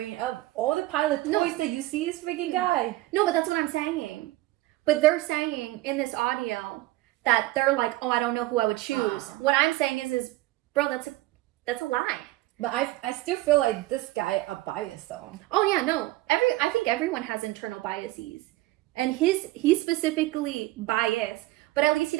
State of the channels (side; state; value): left; quieter; 18.0 dB